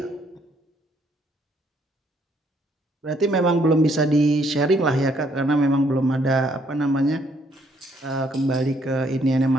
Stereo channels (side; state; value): both; normal; correlation 0.68